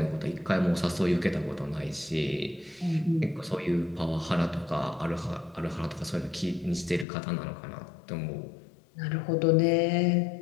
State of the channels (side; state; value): right; drops out; at 7.1 s